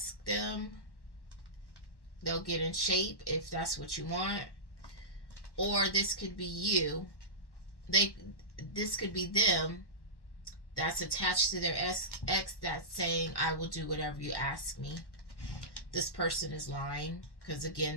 them. They'll get in shape if that's what you want. Or this could be you. This could be them that's attached to their ex that's saying, I will do whatever you ask me. This person is lying because, again,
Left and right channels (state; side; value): late; right; 1.1 ms